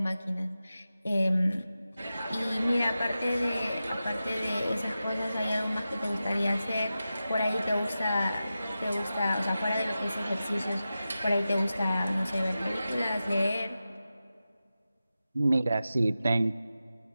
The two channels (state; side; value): inverted; both; correlation -0.93